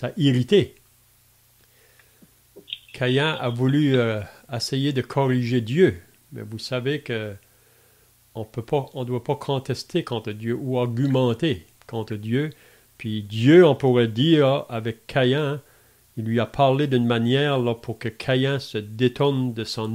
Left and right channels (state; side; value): identical; both; correlation 1.00